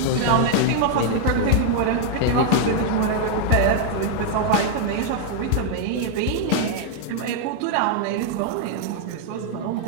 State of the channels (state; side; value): different; both; correlation 0.00